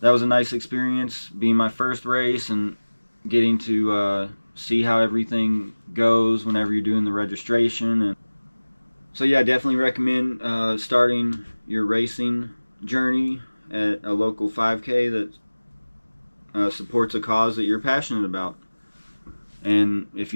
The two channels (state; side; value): inverted; both; correlation -1.00